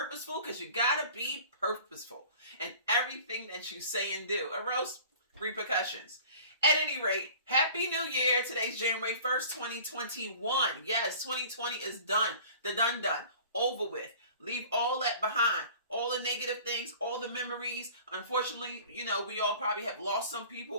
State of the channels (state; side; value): inverted; both; correlation -0.45